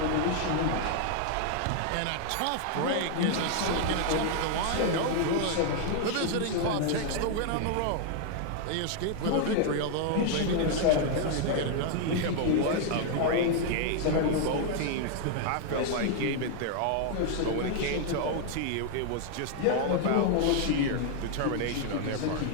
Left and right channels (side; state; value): both; different; correlation 0.00